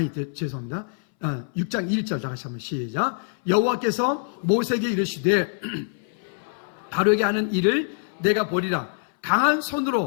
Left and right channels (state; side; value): silent; right; 60 dB below the other